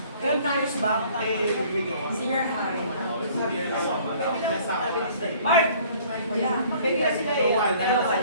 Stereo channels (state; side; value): inverted; both; correlation -0.54